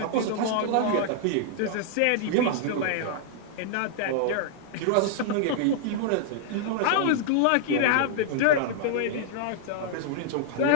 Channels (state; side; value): different; both; correlation -0.01